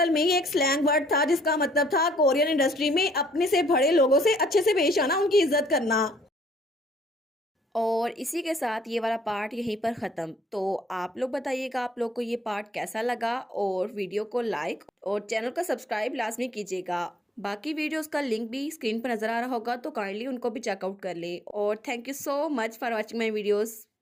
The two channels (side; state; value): both; normal; correlation 0.65